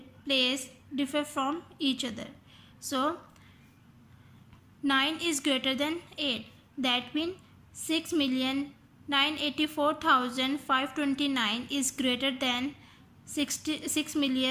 place differ from each other. So 9 is greater than 8. That means 6,984,529 is greater than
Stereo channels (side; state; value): both; identical; correlation 1.00